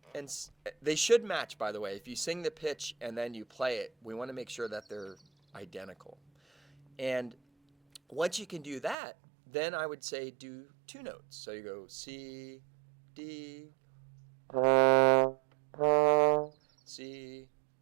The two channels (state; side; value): drops out; left; at 9.0 s